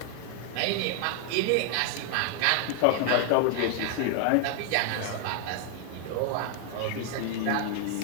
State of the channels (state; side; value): different; both; correlation 0.00